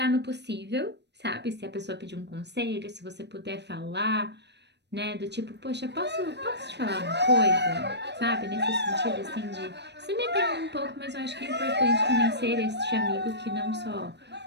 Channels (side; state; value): left; late; 0.50 ms